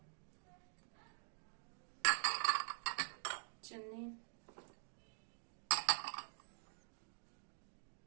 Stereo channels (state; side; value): silent; left; digital silence